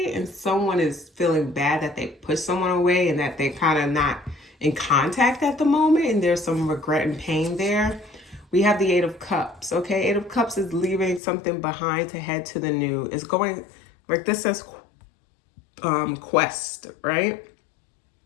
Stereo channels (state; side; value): drops out; right; at 11.2 s